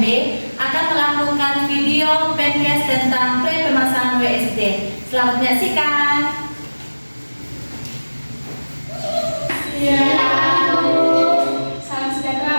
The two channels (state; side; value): inverted; both; correlation -1.00